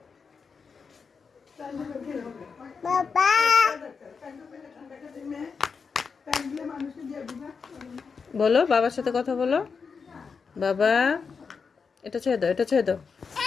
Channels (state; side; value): quieter; right; 5.4 dB